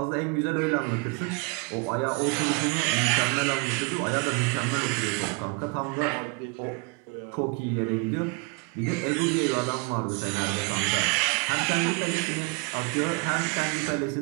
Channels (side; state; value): left; quieter; 28.4 dB